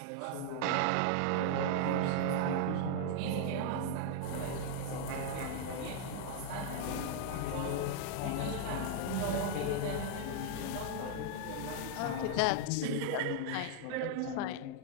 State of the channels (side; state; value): both; different; correlation 0.00